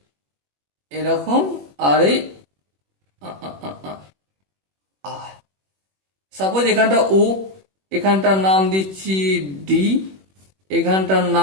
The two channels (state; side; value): late; left; 21 ms